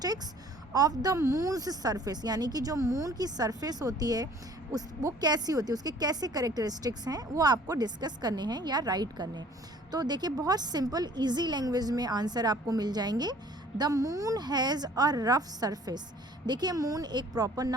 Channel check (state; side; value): normal; both; correlation 0.53